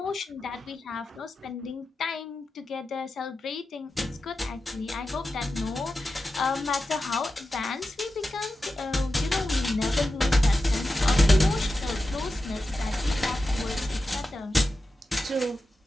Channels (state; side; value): normal; both; correlation 0.91